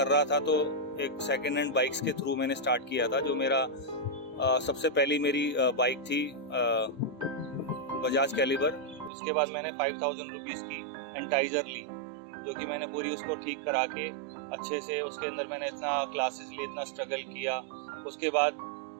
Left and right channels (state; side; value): drops out; left; at 9.1 s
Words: रहा था तो एक सेकेंड हैंड बाइक्स के थ्रू मैंने स्टार्ट किया था। जो मेरा सबसे पहली मेरी बाइक थी बजाज कैलिबर। उसके बाद मैंने 5000 रुपीज़ की एंटाइजर ली, जो कि मैंने पूरी उसको ठीक करा के अच्छे से, उसके अंदर मैंने इतना क्लासेस लिए, इतना स्ट्रगल किया। उसके बाद